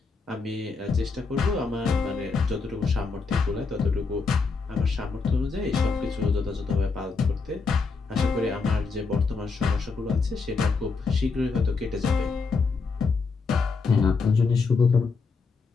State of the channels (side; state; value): right; quieter; 4.5 dB